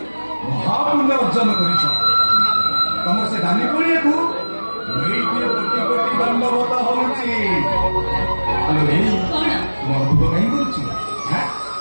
ମହାପୁଣ୍ୟ ଅର୍ଜନ କରିଛ। ତମର ସେ ଦାନୀ ପଡ଼ିଆକୁ କୋଟି କୋଟି ଦଣ୍ଡବତ ହଉଛି। ତୁମ ଅଦ୍ଭୁତ କାହିଁ କରୁଛୁ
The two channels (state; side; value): inverted; both; correlation -1.00